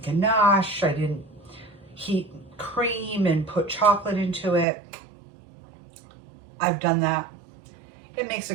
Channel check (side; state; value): left; drops out; at 4.7 s